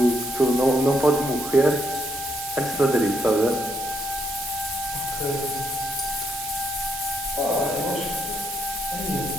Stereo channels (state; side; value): noise; right; hiss, 9 dB below the sound